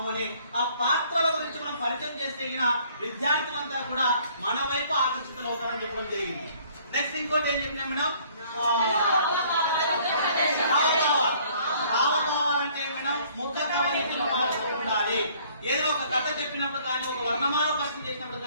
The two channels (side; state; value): both; inverted; correlation -0.59